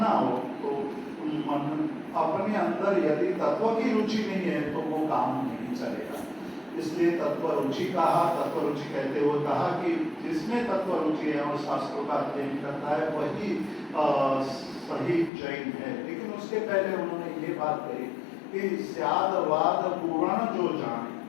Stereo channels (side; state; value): right; drops out; at 15.3 s